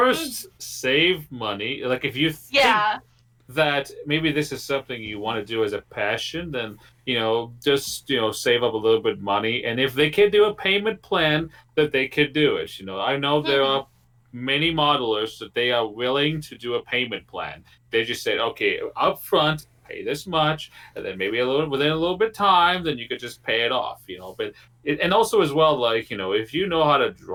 save money. Like if you think that maybe this is something you want to do as a passion, then just save up a little bit of money, and if they can do a payment plan, that they could do it. I know there are many modelers that they are willing to do a payment plan. They just said, okay, up front, pay this much, and then maybe within a little bit of time, then you could just pay it off. But and also as well, like if you know how to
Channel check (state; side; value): identical; both; correlation 1.00